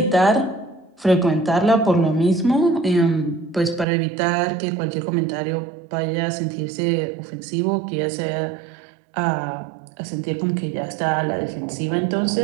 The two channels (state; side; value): drops out; left; at 3.9 s